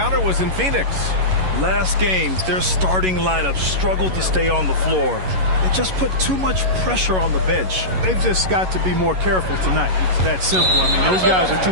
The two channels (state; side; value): late; left; 11 ms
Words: was in Phoenix. Last game, their starting lineup struggled to stay on the floor. They just put too much pressure on the bench. They've just got to be more careful tonight. It's that simple. I mean, those guys are